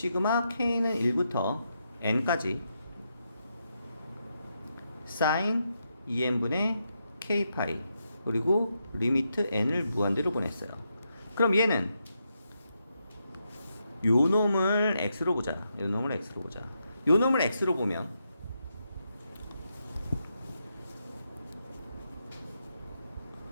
k는 1부터 n까지 sin 2n분의 k파이 그리고 리미트 n을 무한대로 보냈어요. 그럼 얘는 요 놈을 x로 보자. 요 놈을 x로 보면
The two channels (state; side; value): inverted; both; correlation -0.83